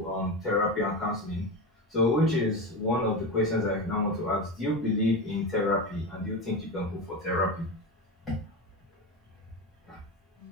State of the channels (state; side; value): normal; both; correlation 0.20